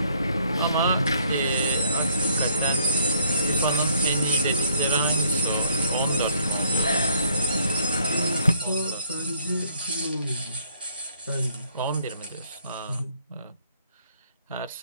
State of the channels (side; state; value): both; inverted; correlation -0.67